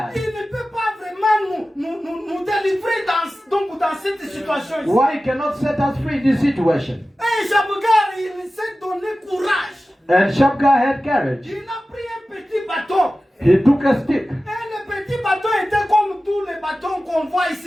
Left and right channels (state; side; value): normal; both; correlation 0.95